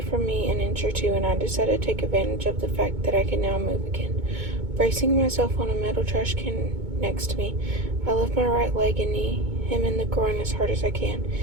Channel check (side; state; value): left; late; 2.2 ms